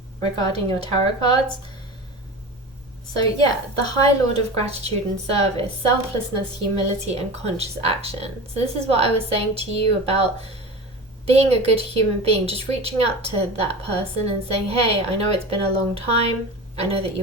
regarding your tarot cards. So yeah, the High Lord of Gratitude and Service, selflessness, humility, and conscious action. So this is what I was saying to you about being a good human being, just reaching out to that person and saying, hey, I know it's been a long time. I know that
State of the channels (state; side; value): normal; both; correlation 0.31